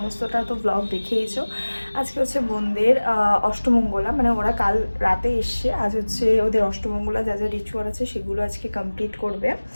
তো ব্লগ দেখেইছো। আজকে হচ্ছে বোনদের অষ্টমঙ্গলা, মানে ওরা কাল রাতে এসছে, আজ হচ্ছে ওদের অষ্টমঙ্গলা, যা যা রিচুয়াল আছে সেগুলো আজকে কমপ্লিট করবে,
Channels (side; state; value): both; inverted; correlation -1.00